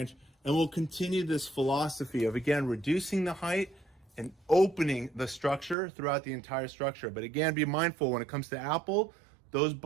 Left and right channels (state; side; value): drops out; left; at 5.8 s